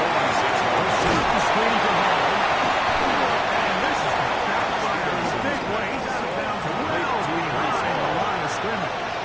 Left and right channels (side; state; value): both; identical; correlation 1.00